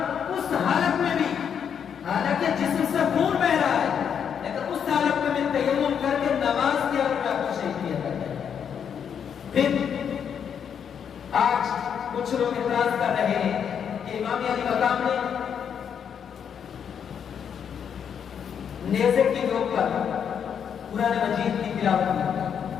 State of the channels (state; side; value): quieter; right; 7.8 dB